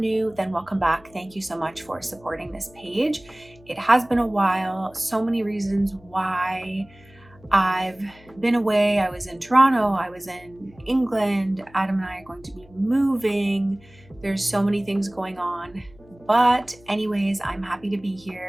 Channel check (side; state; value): left; noise; hum, 25 dB below the sound